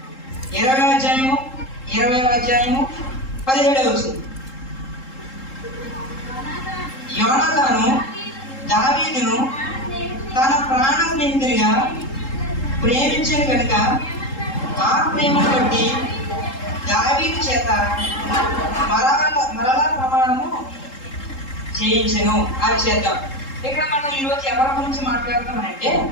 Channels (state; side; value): late; right; 3.7 ms